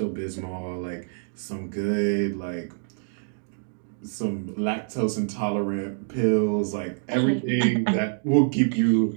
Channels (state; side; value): silent; left; digital silence